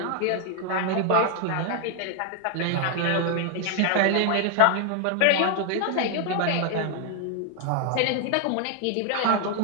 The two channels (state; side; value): different; both; correlation 0.00